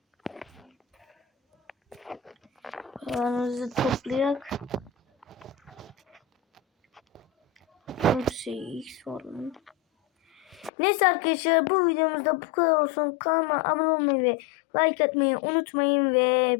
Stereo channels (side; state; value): right; drops out; at 10.7 s